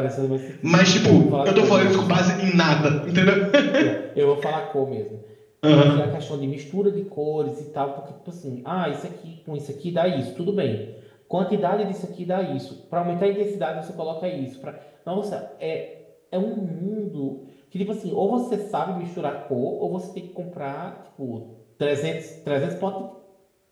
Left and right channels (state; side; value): identical; both; correlation 1.00